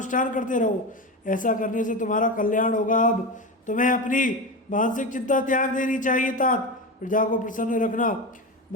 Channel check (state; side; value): normal; both; correlation 0.21